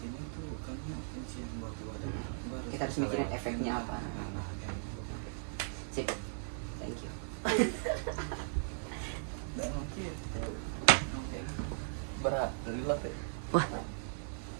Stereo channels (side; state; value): left; silent; digital silence